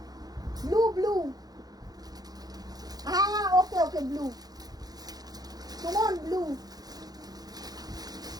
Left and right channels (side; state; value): left; late; 0.19 ms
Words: ব্লু ব্লু, হ্যাঁ হ্যাঁ ওকে ওকে, ব্লু কেমন ব্লু।